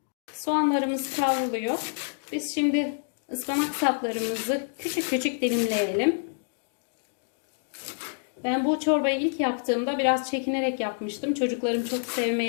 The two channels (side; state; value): right; silent; digital silence